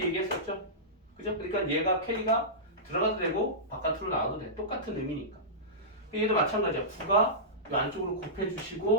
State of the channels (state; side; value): normal; both; correlation -0.17